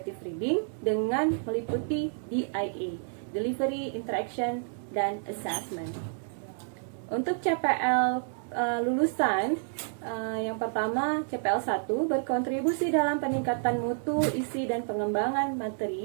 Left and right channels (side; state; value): left; silent; digital silence